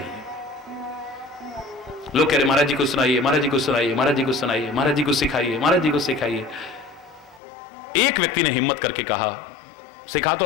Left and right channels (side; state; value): right; drops out; at 7.4 s